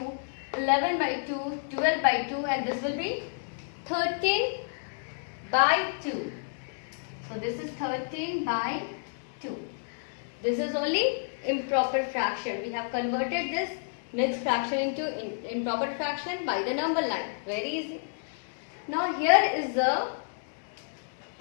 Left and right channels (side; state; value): right; silent; digital silence